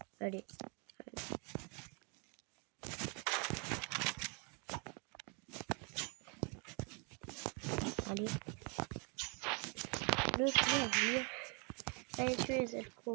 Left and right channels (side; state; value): left; quieter; 34.5 dB